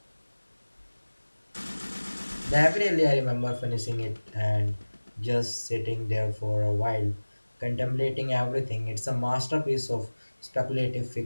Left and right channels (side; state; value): both; inverted; correlation -1.00